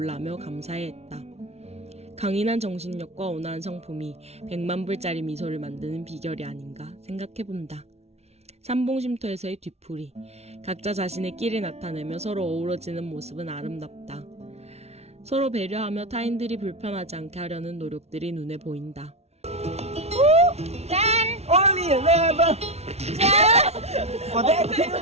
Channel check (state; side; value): late; left; 0.31 ms